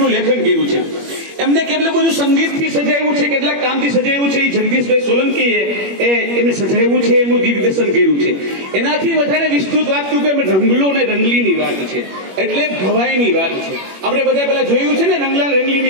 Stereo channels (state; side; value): late; left; 21 ms